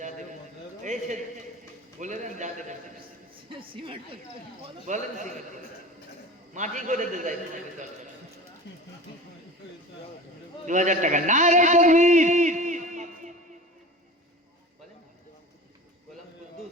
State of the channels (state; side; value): normal; both; correlation 0.36